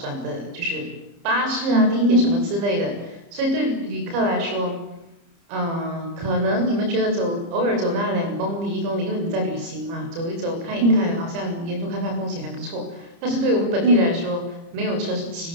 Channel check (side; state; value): left; late; 30 ms